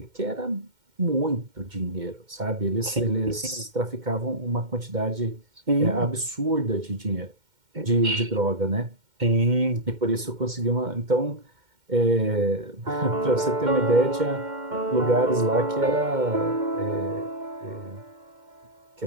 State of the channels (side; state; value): left; late; 2.1 ms